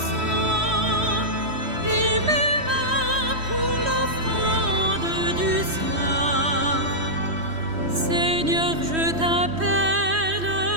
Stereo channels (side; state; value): left; late; 3.1 ms